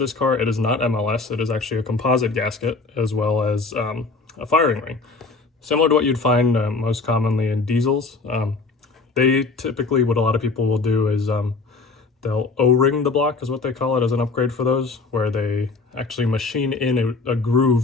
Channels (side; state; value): right; quieter; 4.0 dB